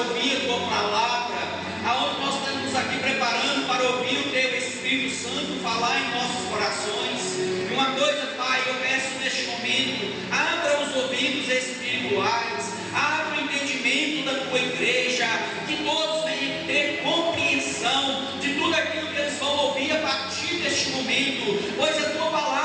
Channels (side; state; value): both; identical; correlation 1.00